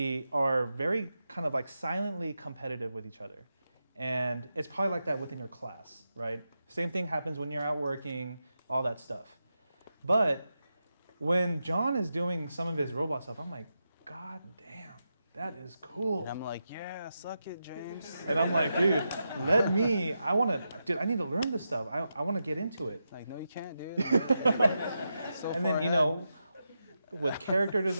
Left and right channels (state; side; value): inverted; both; correlation -0.88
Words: are very kind of like silently competitive with each other, and it's probably like that within your class, right? Same thing happens when you're out working, all that stuff. But when John is doing some of his robot stuff, I'm like, God damn. That is cool. And I'm like, yeah, suck it, James. And I'm like, dude, I need to learn this stuff. I want to get into it. Like, no, you can't, dude. And then, you know, with character